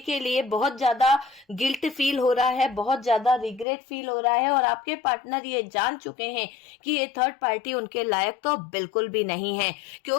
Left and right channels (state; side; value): drops out; right; at 3.7 s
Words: लिए बहुत ज्यादा गिल्ट फील हो रहा है, बहुत ज्यादा रिग्रेट फील हो रहा है। और आपके पार्टनर ये जान चुके हैं कि ये थर्ड पार्टी उनके लायक तो बिल्कुल भी नहीं है,